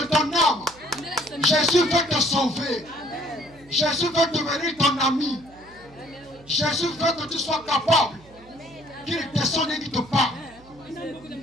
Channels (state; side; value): noise; right; hum, 25 dB below the sound